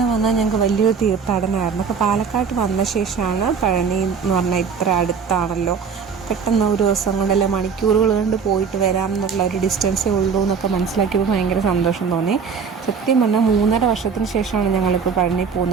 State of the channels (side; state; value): left; quieter; 6.1 dB